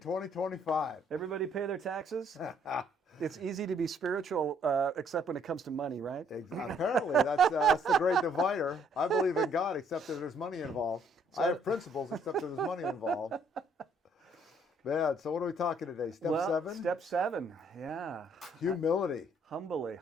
Everybody pay their taxes? It's easy to be spiritual, except when it comes to money, right? Apparently, that's the great divider. I believe in God, except that there's money involved. I have principles, except that there's money involved. Man, so what are we talking today? Step Well, 7? Step 7, yeah. Humility.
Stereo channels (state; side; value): normal; both; correlation 0.65